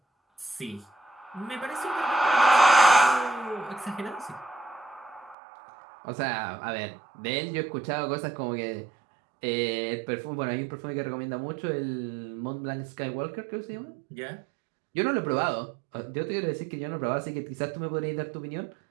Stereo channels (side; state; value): left; drops out; at 5.4 s